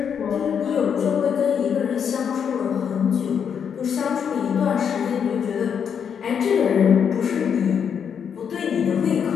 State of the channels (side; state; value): right; quieter; 7.5 dB